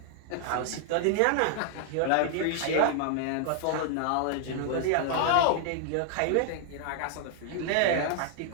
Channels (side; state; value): both; different; correlation 0.00